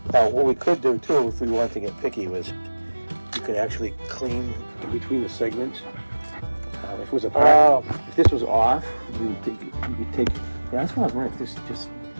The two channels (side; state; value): both; inverted; correlation -1.00